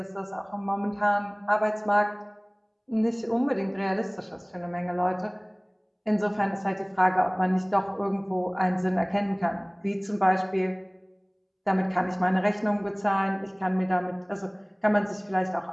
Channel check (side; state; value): both; identical; correlation 1.00